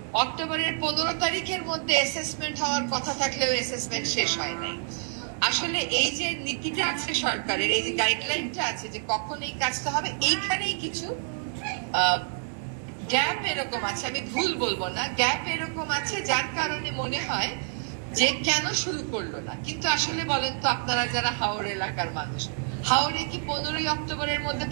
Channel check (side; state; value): left; silent; 60 dB below the other